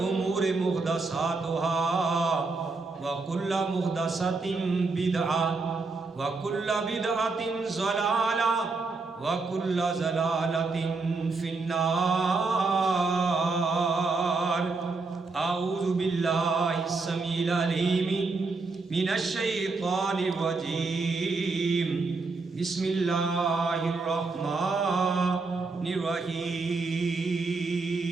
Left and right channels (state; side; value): quieter; left; 4.0 dB